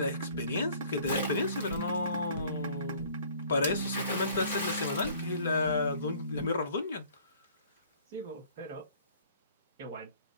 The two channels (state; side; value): inverted; both; correlation -0.55